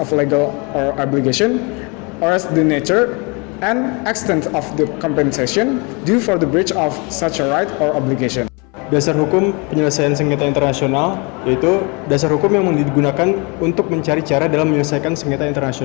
legal or obligation or as the nature and extent of the compensation due for the breach of such a right or obligation. Dasar hukum penyelesaian sengketa internasional yaitu dasar hukum yang digunakan untuk mencari cara dalam menyelesaikan sengketa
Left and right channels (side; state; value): right; quieter; 30.4 dB